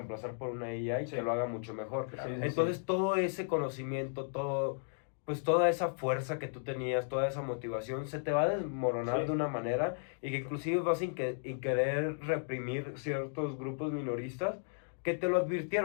por una AI Sí. que lo haga mucho mejor. Sí, sí, Entonces sí. todo ese conocimiento, pues toda esa fuerza que tú tenías, toda esa motivación, se te va a desmoronar Sí. de una manera y que inclusive vas a querer reprimir ciertos grupos minoristas que te lo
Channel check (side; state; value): right; silent; digital silence